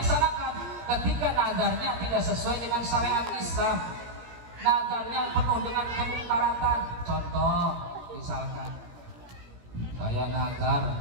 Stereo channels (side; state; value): left; late; 17 ms